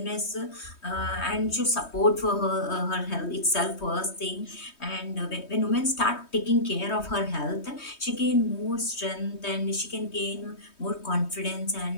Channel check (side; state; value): right; late; 3.2 ms